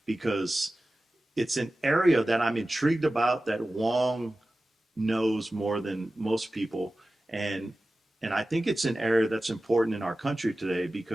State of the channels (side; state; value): both; normal; correlation 0.95